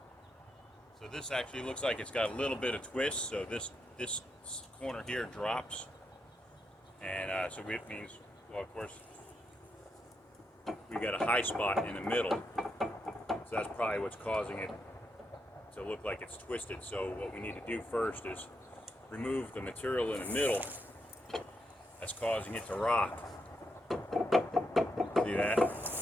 So this actually looks like it's got a little bit of twist, so this corner here drops, and so it means, well, of course, we got a high spot in the middle, so that's probably what's causing it to look like it's twisted. So what we need to do first is remove the material in the middle that's causing it to rock. See that?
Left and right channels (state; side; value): normal; both; correlation 0.82